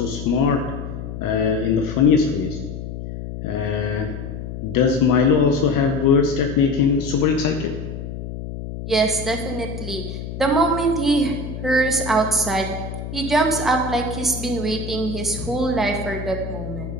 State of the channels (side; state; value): left; noise; hum, 8 dB below the sound